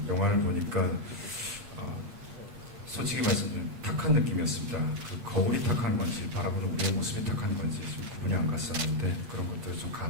영화를 보니까 솔직히 말씀드리면 탁한 느낌이었습니다. 그 거울이 탁한 건지 바라보는 우리의 모습이 탁한 건지 좀 구분이 안 갔었는데 그런 것들을 좀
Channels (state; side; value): late; left; 8.8 ms